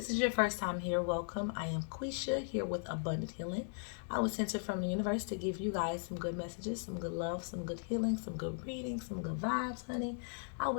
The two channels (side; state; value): right; silent; digital silence